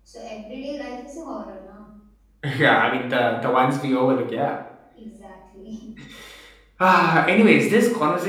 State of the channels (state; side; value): identical; both; correlation 1.00